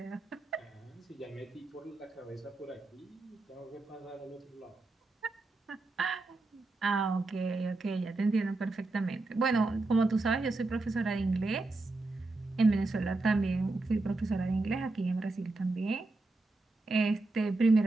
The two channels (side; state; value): left; quieter; 3.1 dB